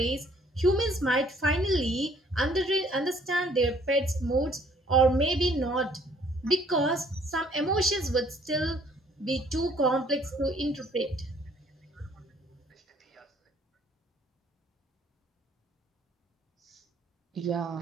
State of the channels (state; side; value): normal; both; correlation 0.61